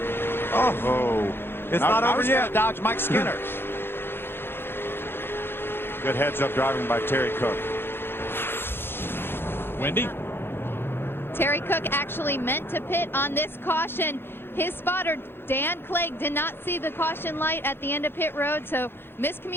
Oh, it's not over yet. Dodge Mike Skinner. Good heads-up driving by Terry Cook. Wendy? Terry Cook actually meant to pit on this caution. His spotter, Dan Clegg, did not see the caution light at the end of pit road, so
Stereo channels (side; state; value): right; late; 0.11 ms